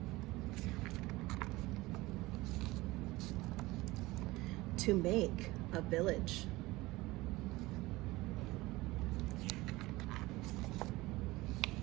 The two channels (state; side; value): quieter; left; 20.1 dB